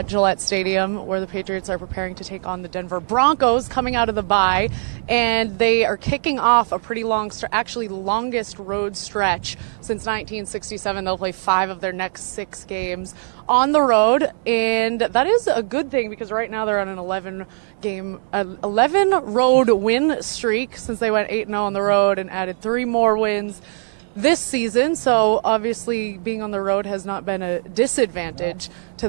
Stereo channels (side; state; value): left; silent; digital silence